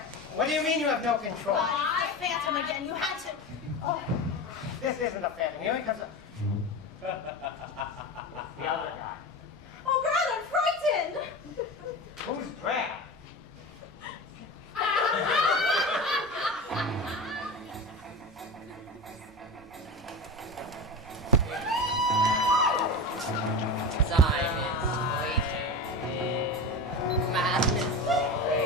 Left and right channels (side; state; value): both; normal; correlation 0.26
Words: What do you mean you have no control? I Phantom again. You had to. Oh, This isn't a phantom. Here he comes. The other guy. oh God, I'm frightened. Who's Brad?